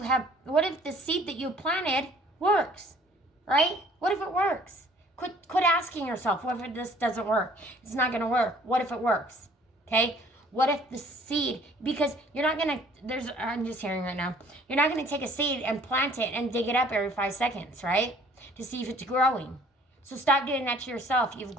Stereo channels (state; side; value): normal; both; correlation 0.56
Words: if the seed that you planted works, right? What if it works? Quit asking yourself, what if this doesn't work? It's not going to work. What if it works, okay? What if the seed, because you're not going to, I'm just hearing right now, you're not going to take a seed and plant it and dig it up every 5 seconds, right? To see if it's growing. So stop doing that to yourself. You've